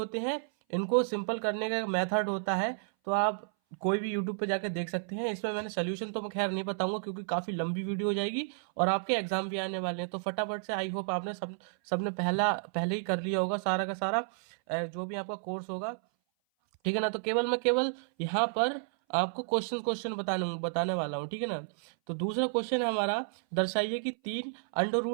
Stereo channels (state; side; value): silent; left; 57 dB below the other